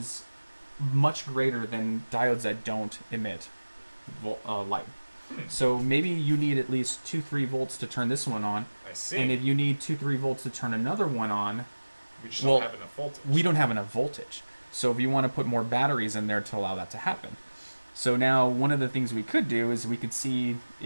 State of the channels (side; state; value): both; inverted; correlation -1.00